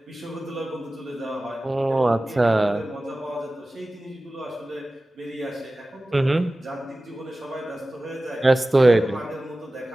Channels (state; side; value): normal; both; correlation 0.96